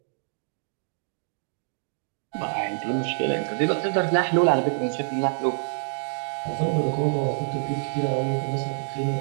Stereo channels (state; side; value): silent; left; digital silence